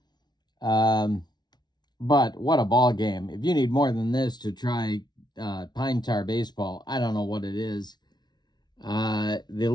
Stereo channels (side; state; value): right; late; 0.20 ms